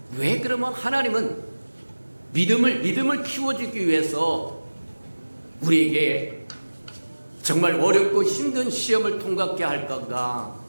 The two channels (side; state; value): both; inverted; correlation -1.00